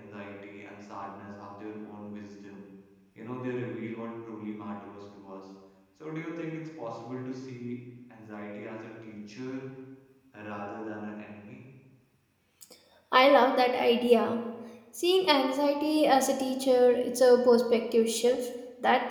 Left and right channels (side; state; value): both; identical; correlation 1.00